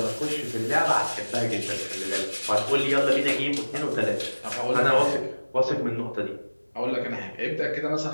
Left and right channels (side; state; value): both; inverted; correlation -1.00